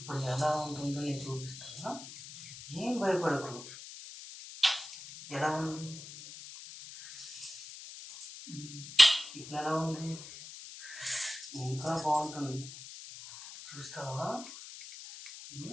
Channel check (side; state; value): left; noise; hiss, 13 dB below the sound